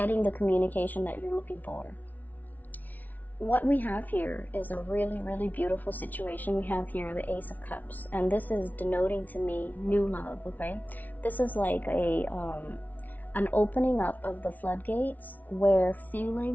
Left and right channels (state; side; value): late; right; 0.078 ms